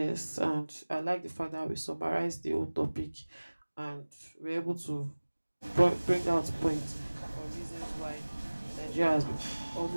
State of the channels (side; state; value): both; inverted; correlation -1.00